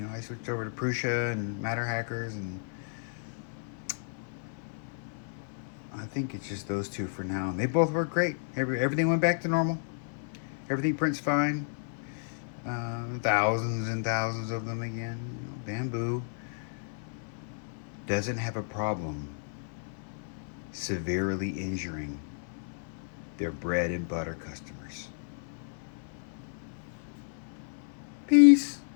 I switched over to Prusa and Matter Hackers, and I think it's just those two for now. And they both work great. Everything went back to normal. Everything prints fine. Thousands and thousands of them again. Bambu doesn't have a problem severely injuring their bread and butter customers. Peace.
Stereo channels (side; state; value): right; silent; 56 dB below the other